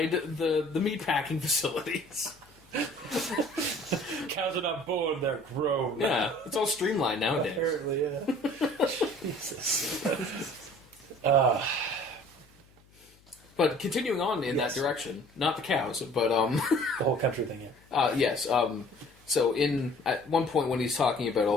the meatpacking facilities. Cows are not born; they're grown. Yeah, it's all streamlined nowadays. Apparently, yeah. Jesus. But continuing on in that direction, not the cows, but The whole country thing, yeah. yes. So at one point when he's talking about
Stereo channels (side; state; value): left; noise; hum, 29 dB below the sound